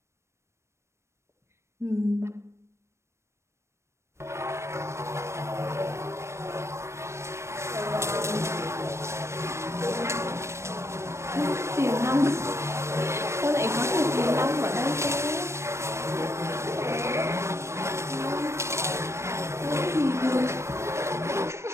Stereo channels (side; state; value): left; late; 0.13 ms